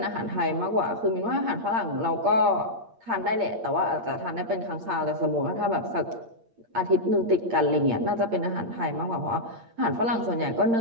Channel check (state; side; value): late; left; 8.7 ms